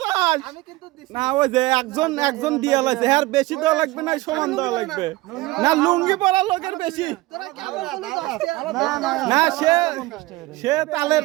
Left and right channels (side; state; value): left; quieter; 19.9 dB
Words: আমি কিন্তু দিছি না, ওই যে একজন দিয়া লাগছে, হ্যাঁ বেশি দেওয়া লাগবে না, সমান দেওয়া লাগবে না। লুঙ্গি পরা লোকের বেশি তোরা কেমন বলো 10 টাকা? না, সে